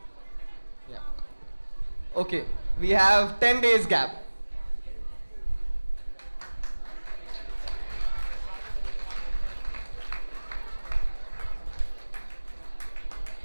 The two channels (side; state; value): both; inverted; correlation -1.00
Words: Yeah. Okay, we have 10 days gap.